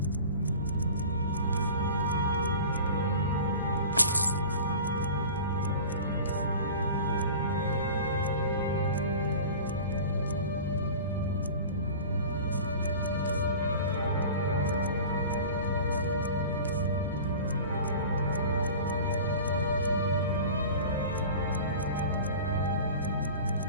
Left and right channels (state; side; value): inverted; both; correlation -0.38